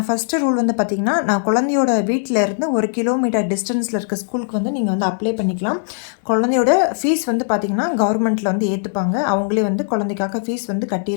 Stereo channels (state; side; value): silent; right; 63 dB below the other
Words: ஃபஸ்ட்டு ரூல் வந்து பார்த்திங்கன்னா, நான் குழந்தையோட வீட்டில் இருந்து 1 கிலோமீட்டர் டிஸ்டன்ஸில் இருக்க ஸ்கூலுக்கு வந்து நீங்கள் வந்து அப்ளை பண்ணிக்கலாம். குழந்தையோட ஃபீஸ் வந்து பார்த்திங்கன்னா கவர்மெண்ட்டில் வந்து ஏற்றுப்பாங்க. அவங்களே வந்து குழந்தைக்காக ஃபீஸ் வந்து